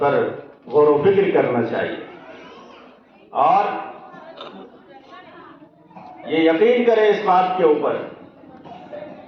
غور و فکر کرنا چاہیے اور یہ یقین کریں اس بات کے اوپر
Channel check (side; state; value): both; identical; correlation 1.00